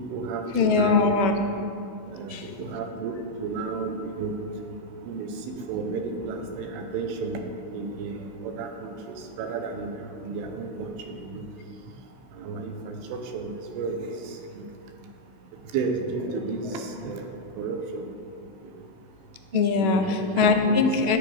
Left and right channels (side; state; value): left; late; 16 ms